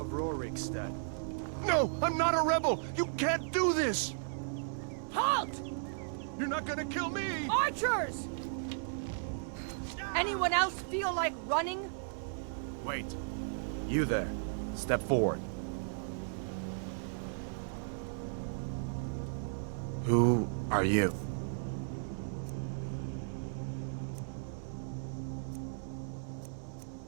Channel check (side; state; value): left; silent; 54 dB below the other